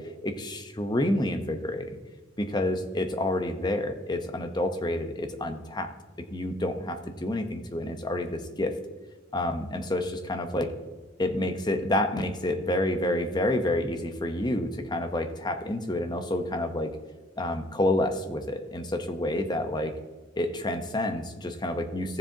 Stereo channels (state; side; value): normal; both; correlation 0.59